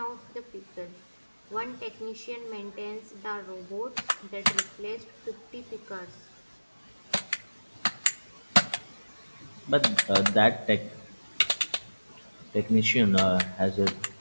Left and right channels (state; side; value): inverted; both; correlation -1.00